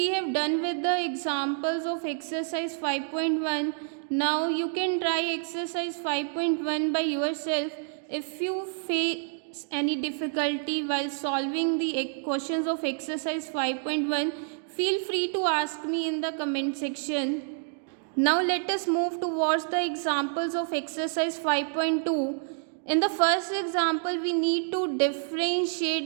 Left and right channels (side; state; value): left; silent; digital silence